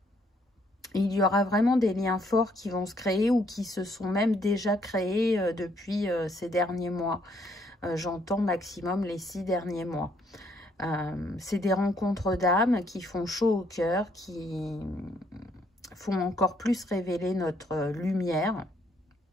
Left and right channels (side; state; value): both; normal; correlation 0.69